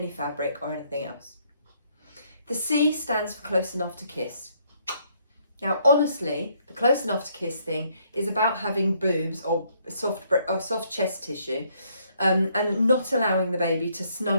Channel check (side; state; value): both; inverted; correlation -0.69